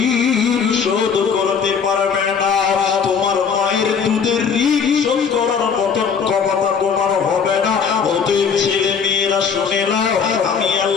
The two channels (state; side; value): quieter; right; 6.4 dB